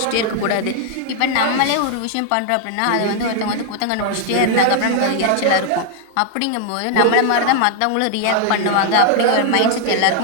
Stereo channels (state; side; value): different; both; correlation 0.00